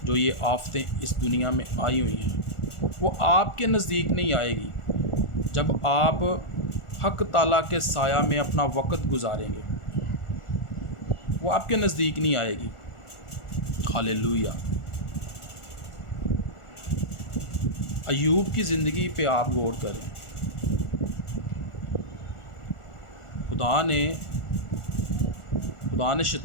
जो ये आफतें इस दुनिया में आई हुई हैं वो आपके नज़दीक नहीं आएगी जब आप हक ताला के साया में अपना वक़्त गुजारेंगे। वो आपके नज़दीक नहीं आएगी। हालेलुया। अय्यूब की ज़िंदगी पे आप गौर करें। खुदा ने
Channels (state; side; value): late; right; 1.4 ms